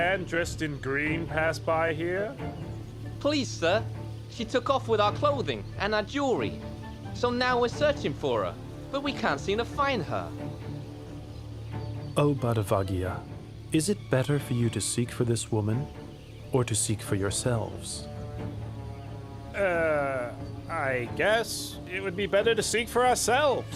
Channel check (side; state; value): both; identical; correlation 1.00